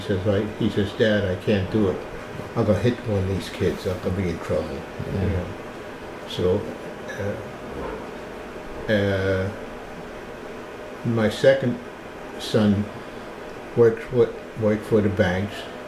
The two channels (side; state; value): both; identical; correlation 1.00